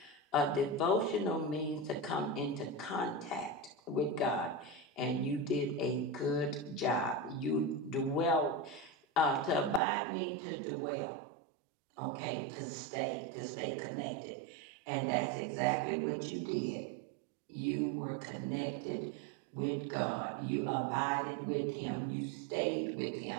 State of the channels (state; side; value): drops out; left; at 9.8 s